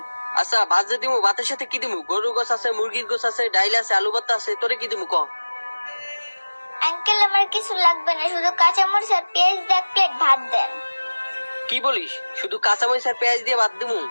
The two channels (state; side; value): inverted; both; correlation -1.00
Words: আচ্ছা ভাত যে দিমু, ভাতের সাথে কি দিমু? গরুর গোছ আছে, মুরগির গোছ আছে, ডাইল আছে, আলু ভর্তা আছে, তোরে কি দিমু ক? আঙ্কেল আমার কিছু লাগবে না, শুধু কাঁচামরিচ আর পেঁয়াজ দিয়ে 1 প্লেট ভাত দেন। কি বলিস? শুধু কাঁচামরিচ আর পেঁয়াজ দিয়ে ভাত দিমু?